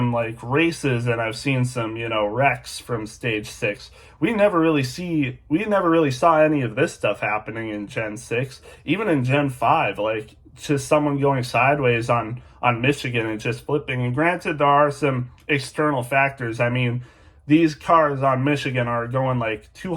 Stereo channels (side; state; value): both; identical; correlation 1.00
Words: like races, and I've seen some, wrecks from stage 6. We never really saw any of this stuff happening in Gen 6. Even in Gen 5, like just someone going sideways on Michigan and just flipping. And granted, there are some external factors. I mean, these cars on Michigan are going like